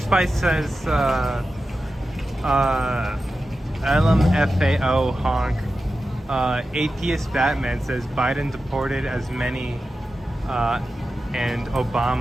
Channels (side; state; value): both; normal; correlation 0.92